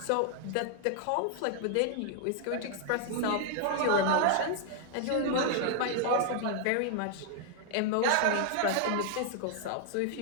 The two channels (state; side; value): different; both; correlation 0.00